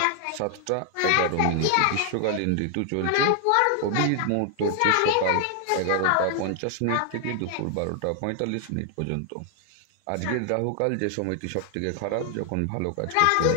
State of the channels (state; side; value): different; both; correlation 0.00